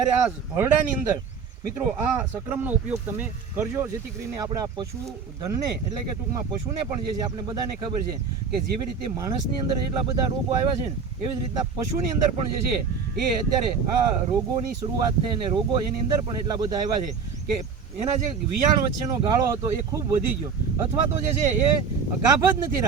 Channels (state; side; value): quieter; left; 5.8 dB